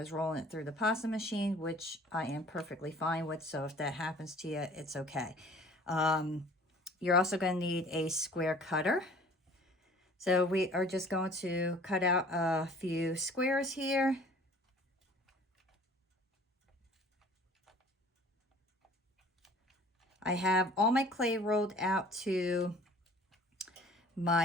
rolling it through the pasta machine, which I am perfectly fine with. So if that happens to you, it's okay. You're also going to need a square cutter. So we are just going to cut out a few squares here. I have all my clay rolled out to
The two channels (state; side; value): normal; both; correlation 0.50